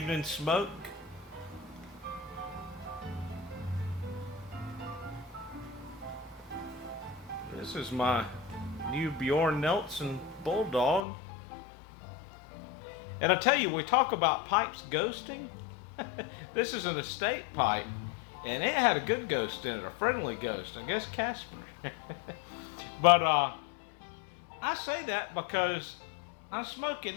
smoke. This is my new Bjorn Nelson Bulldog. And I tell you, we talk about pipes ghosting. This is an estate pipe. And it had a good ghost in it, a friendly ghost. I guess Casper. But I say that because I'm smoking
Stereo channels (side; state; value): right; drops out; at 11.1 s